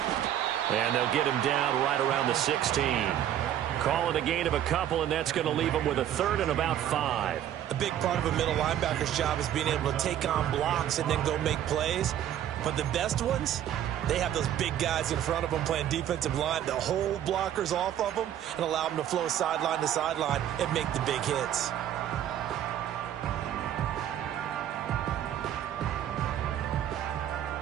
And they'll get him down right around the 16. Call it a gain of a couple, and that's going to leave him with a 3rd and about 5. A big part of a middle linebacker's job is being able to take on blocks and then go make plays. But the best ones, they have those big guys in front of them playing defensive line to hold blockers off of them and allow them to flow sideline to sideline and make the big hits.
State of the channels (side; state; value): left; quieter; 11.0 dB